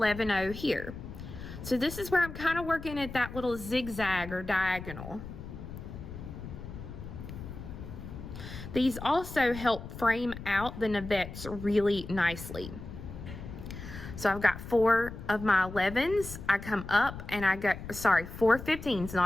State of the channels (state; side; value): noise; left; rumble, 11 dB below the sound